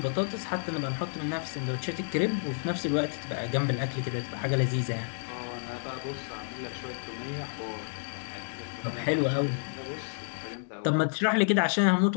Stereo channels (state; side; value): silent; right; digital silence